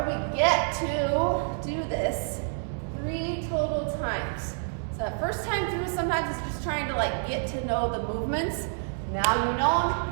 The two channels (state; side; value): silent; left; 59 dB below the other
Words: we get to do this 3 total times. So that first time through, sometimes it's just trying to like get to know the movements. Now you know